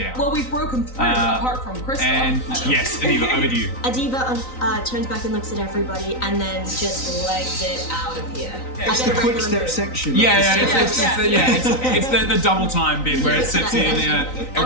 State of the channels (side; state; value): right; late; 3.9 ms